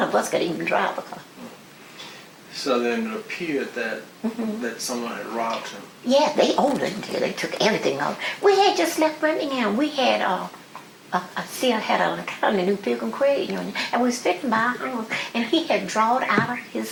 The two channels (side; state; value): both; identical; correlation 1.00